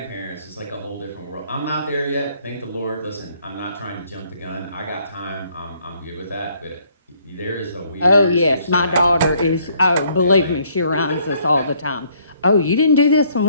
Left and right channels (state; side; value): inverted; both; correlation -0.65